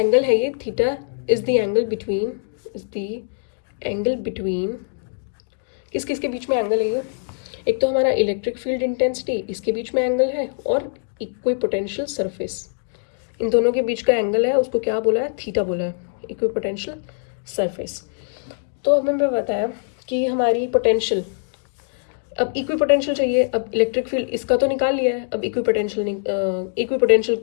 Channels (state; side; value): silent; right; digital silence